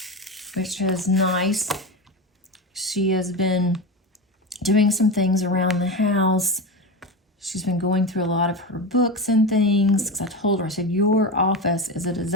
which is nice. She has been doing some things around the house. She's been going through a lot of her books and things, because I told her, I said, your office is a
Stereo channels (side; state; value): both; normal; correlation 0.21